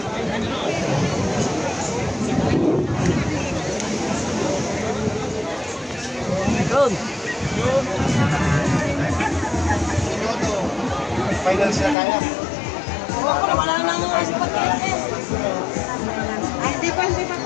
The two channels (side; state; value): right; drops out; at 12.0 s